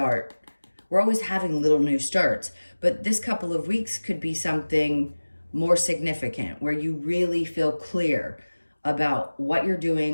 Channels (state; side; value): inverted; both; correlation -1.00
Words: We're always having little new starts, but this couple of weeks could be something more significant where you really feel clear about what you're